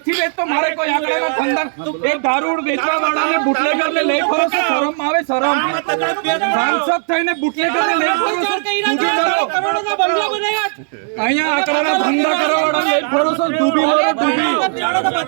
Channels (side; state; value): left; silent; digital silence